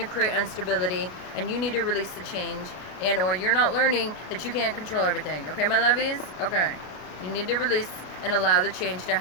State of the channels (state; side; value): late; right; 33 ms